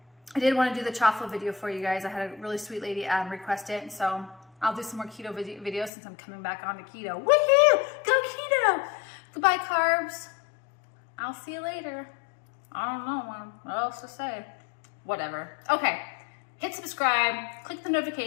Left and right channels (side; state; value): right; drops out; at 5.9 s